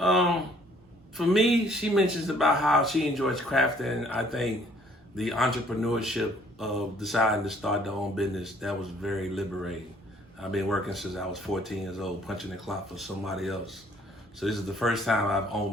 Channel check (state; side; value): normal; both; correlation 0.60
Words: me, she mentions about how she enjoys crafting. I think the entrepreneurship of deciding to start their own business, that was very liberating. I've been working since I was 14 years old, punching the clock for somebody else. So this is the first time I've